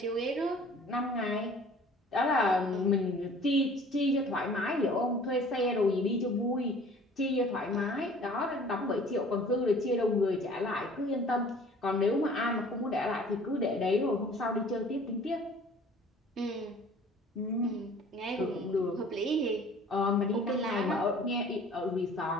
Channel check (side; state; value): both; normal; correlation 0.50